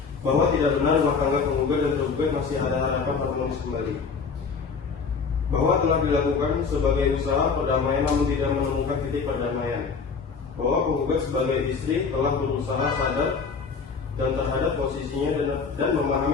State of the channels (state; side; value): quieter; right; 5.2 dB